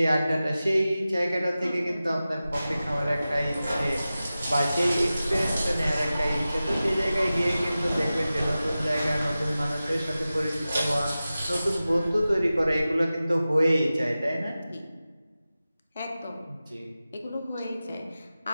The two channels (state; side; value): inverted; both; correlation -0.95